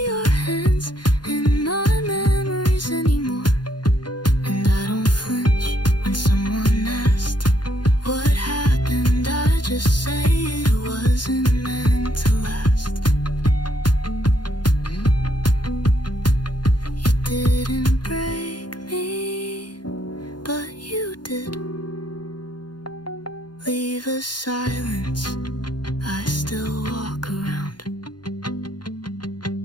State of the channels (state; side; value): late; right; 0.71 ms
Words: your hands in my memories anymore. And I don't flinch when someone asked what happened. I just say it wasn't meant to last. You didn't break me, but you did. Leave a silence, I still walk around.